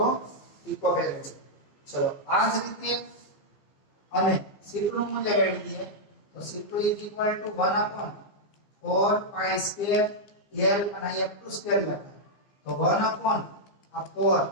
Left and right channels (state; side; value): late; right; 15 ms